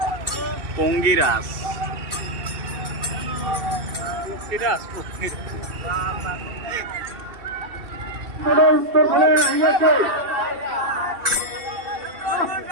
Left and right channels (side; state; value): left; late; 2.7 ms